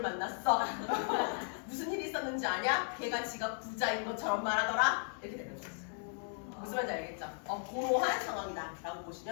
무슨 일이 있었는지 아냐? 걔가 지가 부자인 것처럼 말하더라. 이렇게 되는 거지. 무슨 말인지 알겠죠? 고로한 상황이다 라고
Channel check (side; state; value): right; silent; 54 dB below the other